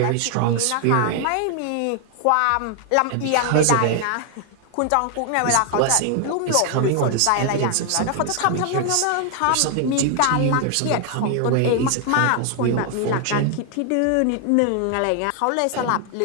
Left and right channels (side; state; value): both; different; correlation 0.00